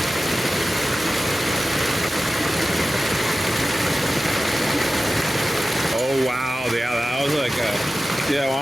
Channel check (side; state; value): both; normal; correlation 0.94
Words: Oh wow, yeah, that was like a, see that